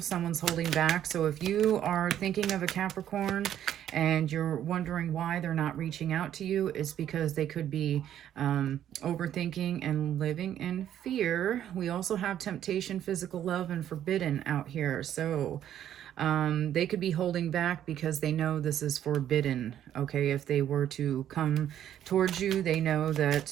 someone's holding back. So if you are thinking of a Capricorn and you're wondering why they're not reaching out to you, it's because they could be overthinking and living in fear. We also have temptation, physical love, and forbidden out here. So they could be holding back because they know this is forbidden. Okay, if they were to come towards you, they know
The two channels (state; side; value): quieter; left; 10.8 dB